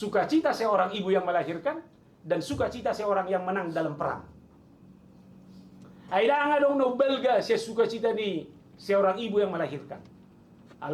seorang ibu yang melahirkan dan sukacita seorang yang menang dalam perang. Aida nga dong no belga siya sukacita ni seorang ibu yang melahirkan.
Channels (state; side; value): identical; both; correlation 1.00